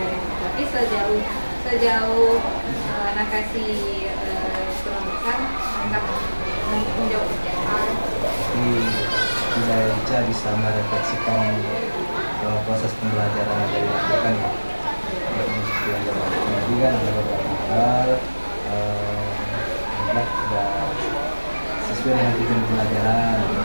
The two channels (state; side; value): inverted; both; correlation -1.00